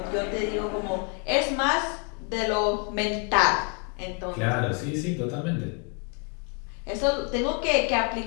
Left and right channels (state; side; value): quieter; right; 35.6 dB